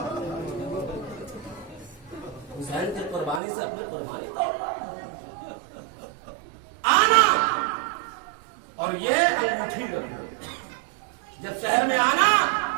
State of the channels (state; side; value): drops out; left; at 3.4 s